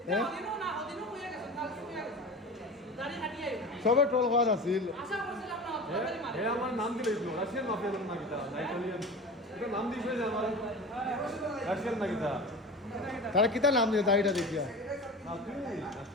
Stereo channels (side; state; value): both; normal; correlation 0.33